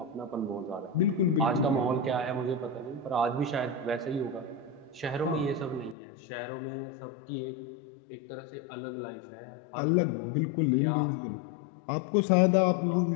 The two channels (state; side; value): drops out; right; at 6.0 s